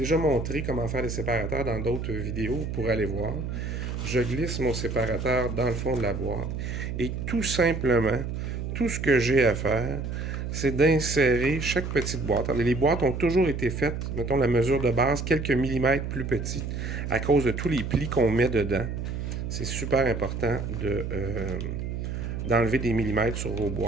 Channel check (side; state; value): right; noise; hum, 4 dB below the sound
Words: montré comment faire des séparateurs dans d'autres vidéos, vous pourrez aller voir. Je glisse mon séparateur dans le fond de la boîte. Et tout simplement, tout ce que j'ai à faire, c'est d'insérer chaque petite boîte. Alors, les boîtes ont toujours été faites, mettons la mesure de base, quelques millimètres plus petites, à cause de tous les plis qu'on met dedans. C'est super important d'enlever des millimètres sur vos